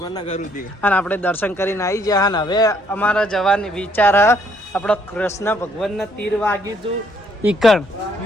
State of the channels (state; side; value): normal; both; correlation 0.67